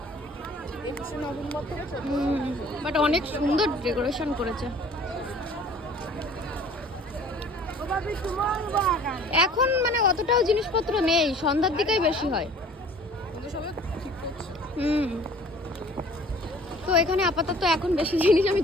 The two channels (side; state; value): both; normal; correlation 0.50